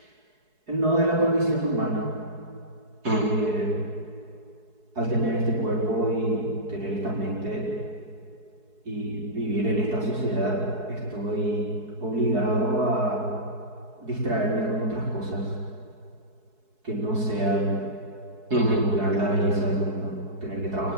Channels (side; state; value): left; late; 4.7 ms